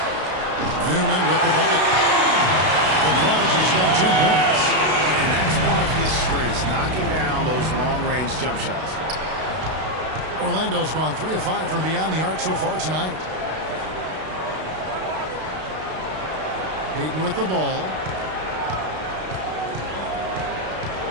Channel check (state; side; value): late; left; 32 ms